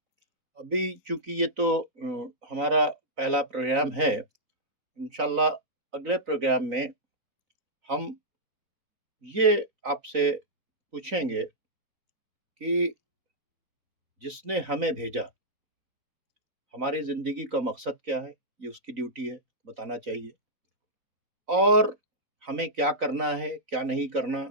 अभी चूंकि ये तो हमारा पहला प्रोग्राम है, इंशाल्लाह अगले प्रोग्राम में हम ये आपसे पूछेंगे कि जिसने हमें भेजा, हमारी ज़िंदगी का मकसद क्या है, ये उसकी ड्यूटी है, बताना चाहिए। और हमें क्या करना है, क्या नहीं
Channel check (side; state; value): left; late; 4.0 ms